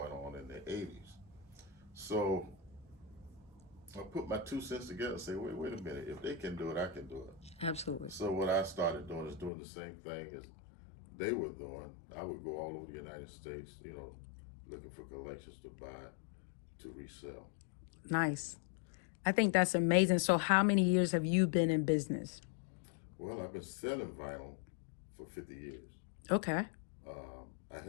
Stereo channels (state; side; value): drops out; right; at 9.5 s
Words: on in the '80s. So I put my 2 cents together and say, wait a minute, if they can do it, I can do it. Absolutely. So what I started doing is doing the same thing as they were doing. I would go all over the United States, looking for collections to buy, to resell. Nice. I think that's amazing. So, how many years have you been in business? Well, I've been selling vinyl for 50 years. Okay. I